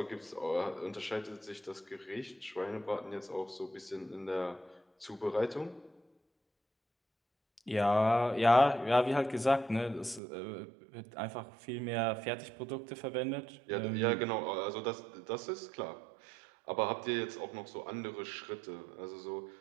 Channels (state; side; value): drops out; left; at 10.2 s